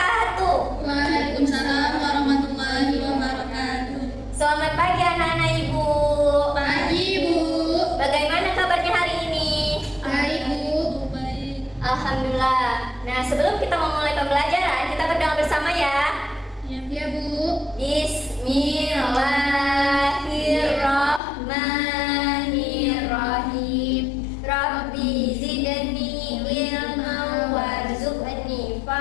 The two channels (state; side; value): drops out; right; at 21.2 s